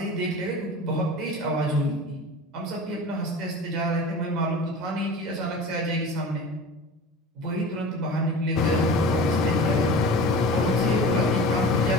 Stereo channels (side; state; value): both; normal; correlation 0.35